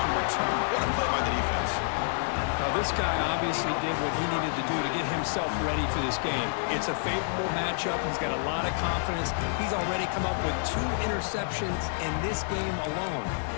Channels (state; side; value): silent; right; digital silence